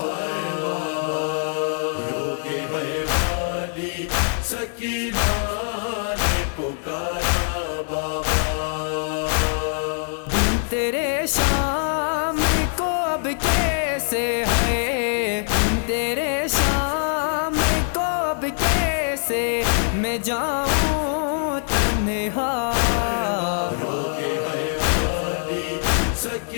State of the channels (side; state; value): right; silent; digital silence